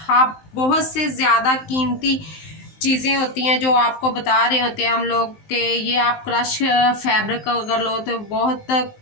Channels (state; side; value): late; right; 19 ms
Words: आप बहुत से ज़्यादा कीमती चीज़ें होती हैं जो आपको बता रहे होते हैं हम लोग कि ये आप क्रश फैब्रिक अगर लो तो बहुत